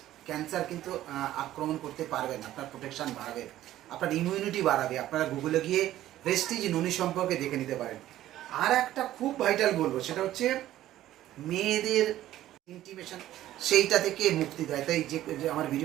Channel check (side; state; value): left; quieter; 13.7 dB